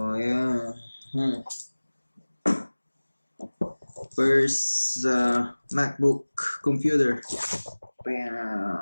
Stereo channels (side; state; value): both; inverted; correlation -1.00